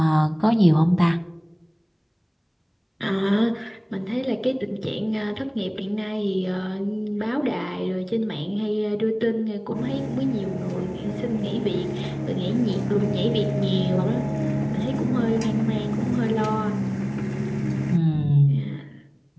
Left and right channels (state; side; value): identical; both; correlation 1.00